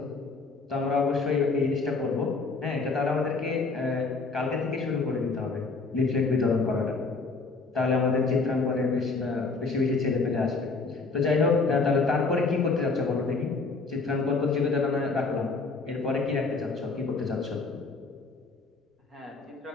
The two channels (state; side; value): quieter; right; 4.0 dB